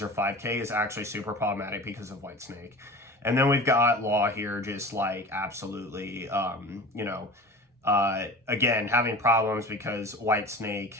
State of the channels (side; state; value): both; normal; correlation 0.36